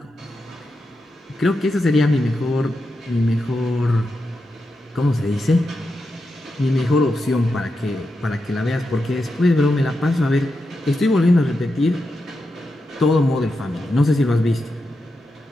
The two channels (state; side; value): normal; both; correlation 0.87